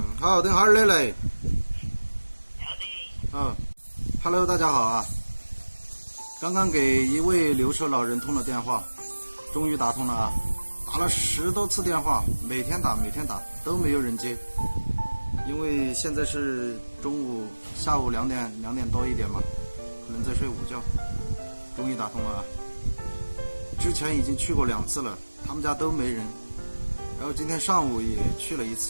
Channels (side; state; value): both; inverted; correlation -1.00